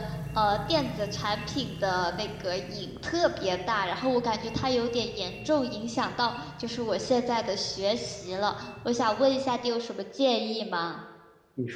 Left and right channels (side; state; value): both; identical; correlation 1.00